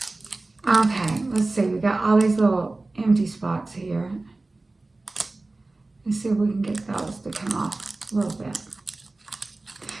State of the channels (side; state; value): left; quieter; 3.1 dB